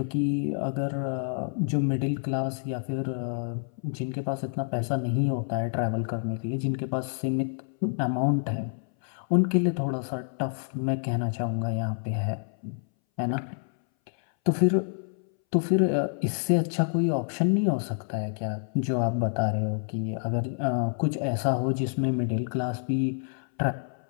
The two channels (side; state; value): right; silent; 59 dB below the other